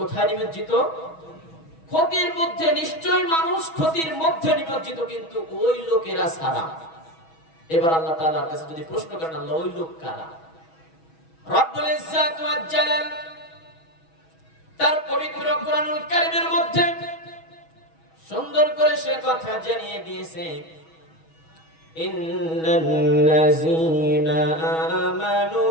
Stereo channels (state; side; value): late; right; 6.2 ms